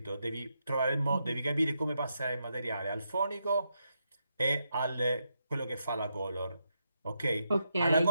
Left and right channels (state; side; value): inverted; both; correlation -0.82